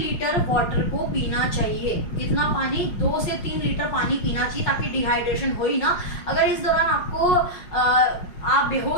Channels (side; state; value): right; late; 5.5 ms